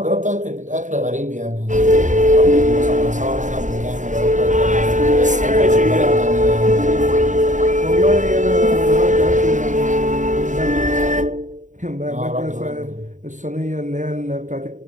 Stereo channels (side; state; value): left; late; 0.36 ms